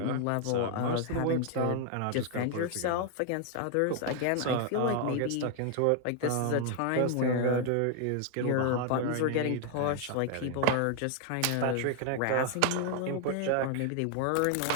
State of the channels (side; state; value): both; different; correlation 0.00